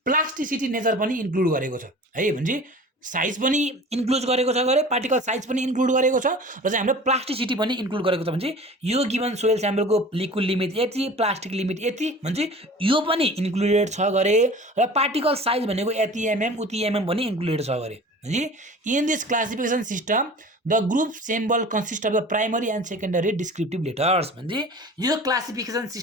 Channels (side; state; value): both; normal; correlation 0.41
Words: प्लास्टिसिटी नेचर पनि इन्क्लुड गरेको छ है। भनेपछि साइज पनि इन्क्लुड गरेको छ गरे, पार्टिकल साइज पनि इन्क्लुड गरेको छ र चाहिँ हाम्रो प्लास्टिसिटी पनि इन्क्लुड गरेको छ। भनेपछि यो गिभन सोइल स्याम्पलको लिक्विड लिमिट यति, प्लास्टिक लिमिट यति, भनेपछि यो पनि इन्क्लुडेड छ गरे र पार्टिकल साइज भनेको यति एमएम उति एमएम पनि इन्क्लुडेड छ गरे। भनेपछि in this classification system the group symbol consist of the primary and secondary descriptive letters. भनेपछि यो क्लासिफिकेसन